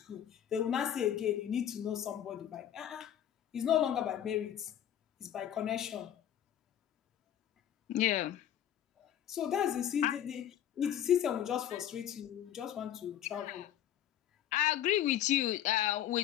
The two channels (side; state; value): right; quieter; 10.8 dB